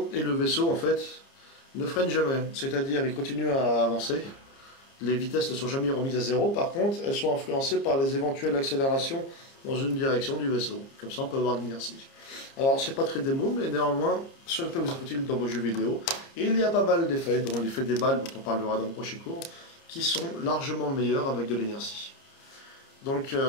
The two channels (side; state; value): right; late; 30 ms